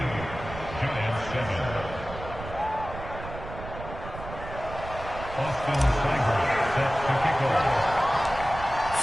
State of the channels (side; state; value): right; noise; rumble, 11 dB below the sound